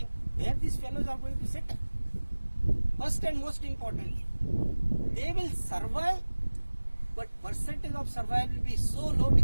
where these fellows are going to settle? First and most importantly, they will survive, but percentage of survival will be so low,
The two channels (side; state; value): both; inverted; correlation -1.00